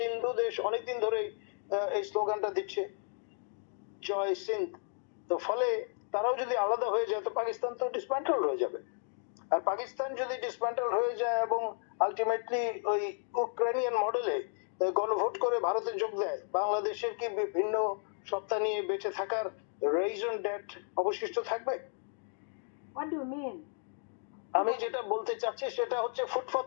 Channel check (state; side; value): silent; right; digital silence